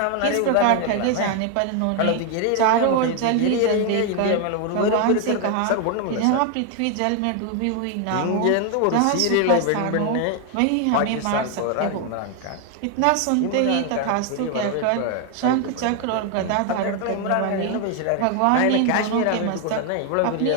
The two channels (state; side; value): different; both; correlation 0.01